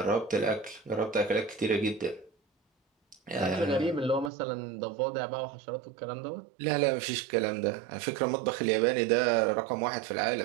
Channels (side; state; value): left; drops out; at 4.3 s